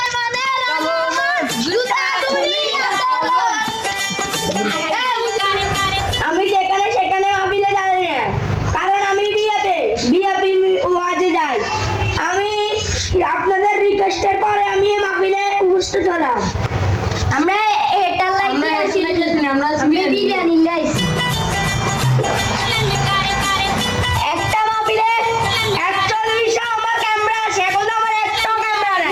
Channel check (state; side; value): identical; both; correlation 1.00